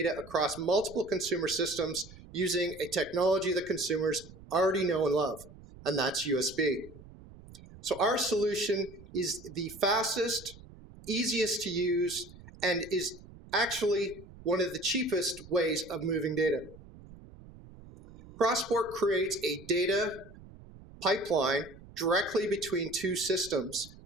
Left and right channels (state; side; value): noise; right; rumble, 19 dB below the sound